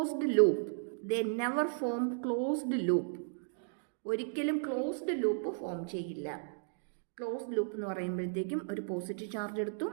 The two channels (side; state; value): left; silent; digital silence